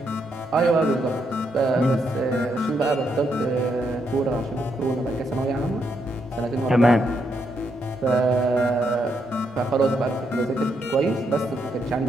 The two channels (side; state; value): right; noise; rumble, 27 dB below the sound